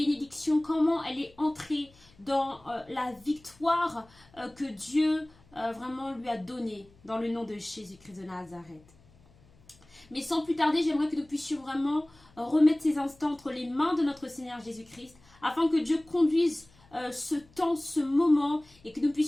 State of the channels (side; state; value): left; noise; hum, 28 dB below the sound